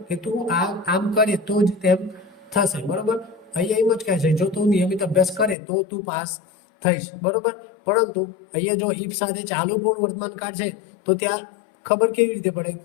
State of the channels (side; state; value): right; drops out; at 5.6 s